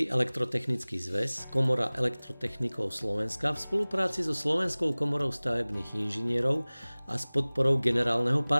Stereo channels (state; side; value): inverted; both; correlation -1.00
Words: elektrotechnický zväz, Komora elektrotechnikov Slovenska v spolupráci so Slovenskou komorou stavebných inžinierov a s podporou generálneho